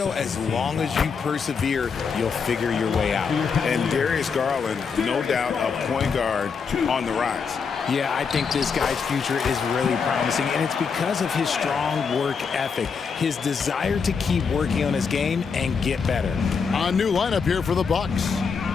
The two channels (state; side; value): quieter; right; 5.8 dB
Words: as long as you persevere, you'll figure your way out. And Darius Garland, no doubt, a point guard on the rise. Yeah, I think this guy's future is really promising, and it's because of his strong work ethic, his desire to keep working on his game and get better. A new lineup here for the Bucks.